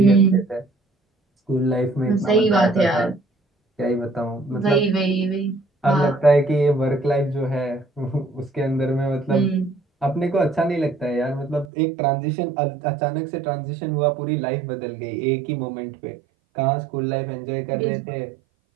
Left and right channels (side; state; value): left; drops out; at 11.7 s